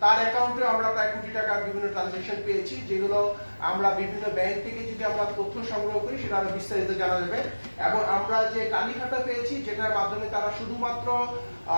তার অ্যাকাউন্টে আমরা প্রায় কোটি টাকার বিভিন্ন ট্রানজাকশন পেয়েছি, যেগুলো আমরা বিভিন্ন ব্যাংক থেকে যদি আমরা তথ্য সংগ্রহ করি সেটা আরো বিস্তারিত জানা যাবে। এবং আমরা যে তালিকাটা পেয়েছি যেটার মাধ্যমে তারা শুধুমাত্র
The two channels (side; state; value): both; inverted; correlation -1.00